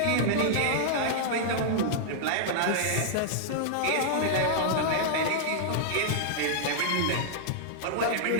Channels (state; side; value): different; both; correlation -0.01